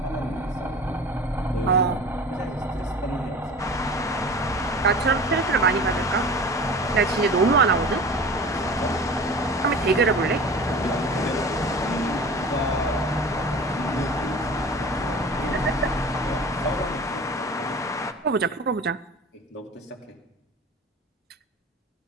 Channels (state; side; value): normal; both; correlation 0.38